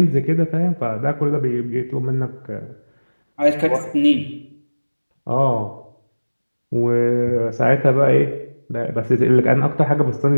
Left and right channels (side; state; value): both; inverted; correlation -1.00